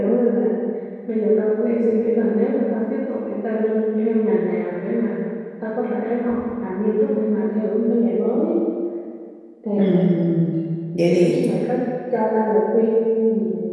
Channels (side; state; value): both; identical; correlation 1.00